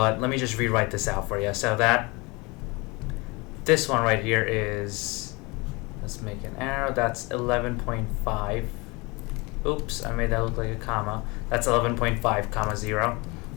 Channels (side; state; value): right; quieter; 25.9 dB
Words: let me just rewrite this out for you. So this one right here is, let's make an arrow, that's 11.5. Oops, I made that look like a comma. That's 11.5 comma 0.